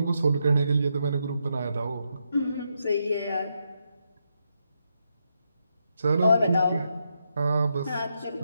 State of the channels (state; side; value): inverted; both; correlation -0.82